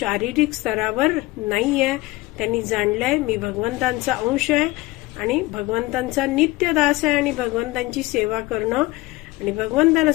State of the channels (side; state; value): right; quieter; 20.4 dB